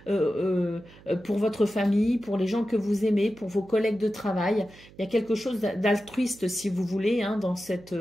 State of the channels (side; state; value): right; noise; hum, 23 dB below the sound